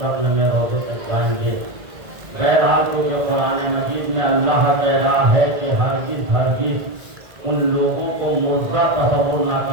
میں روضے تک جائیں گے. بہرحال تو یہ قرآن مجید میں اللہ کہہ رہا ہے کہ ہرگز ہرگز ان لوگوں کو مردہ تصور نہ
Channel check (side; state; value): left; late; 1.9 ms